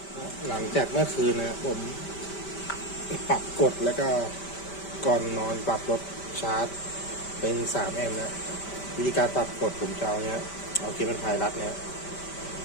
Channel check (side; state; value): right; late; 5.1 ms